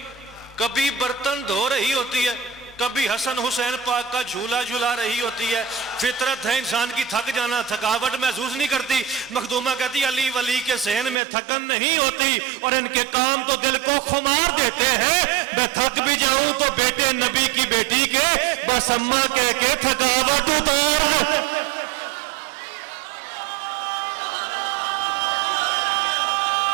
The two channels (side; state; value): left; drops out; at 11.2 s